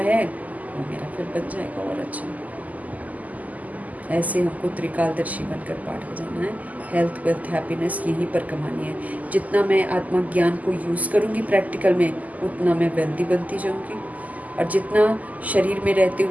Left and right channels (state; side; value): late; left; 0.077 ms